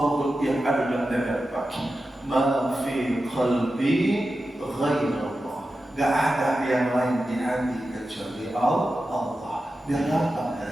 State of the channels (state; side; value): normal; both; correlation 0.92